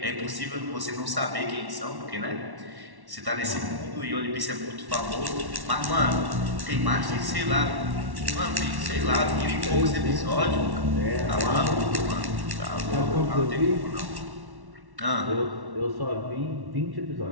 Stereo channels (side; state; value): left; late; 1.1 ms